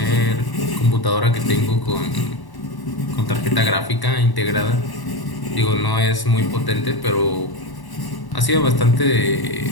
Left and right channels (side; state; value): right; late; 1.1 ms